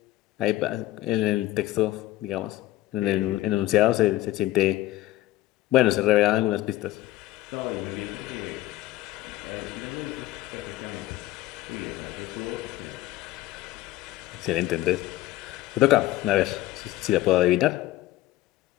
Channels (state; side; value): quieter; right; 15.9 dB